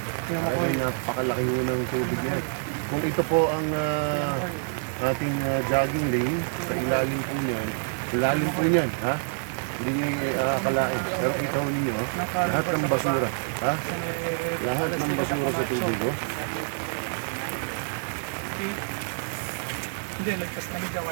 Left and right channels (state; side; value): silent; left; digital silence